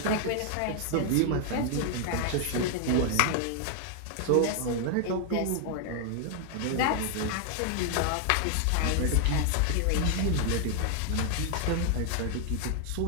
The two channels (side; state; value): both; different; correlation 0.00